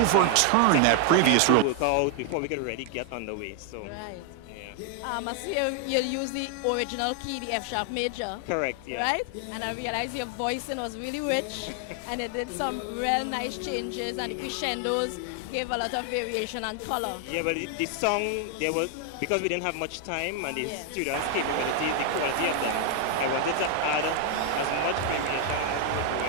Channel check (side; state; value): both; different; correlation 0.00